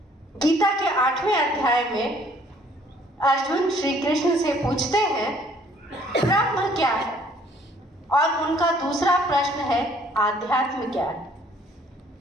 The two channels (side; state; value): both; normal; correlation 0.60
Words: गीता के 8वें अध्याय में अर्जुन श्री कृष्ण से पूछते हैं ब्रह्म क्या है, और उनका दूसरा प्रश्न है आध्यात्म क्या है।